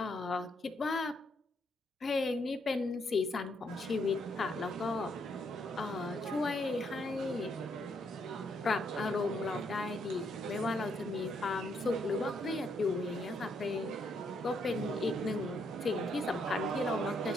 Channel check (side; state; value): both; normal; correlation 0.74